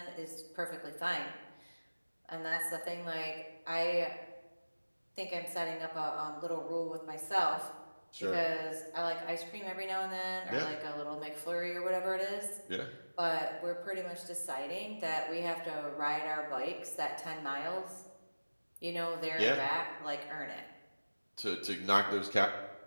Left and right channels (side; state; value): both; inverted; correlation -1.00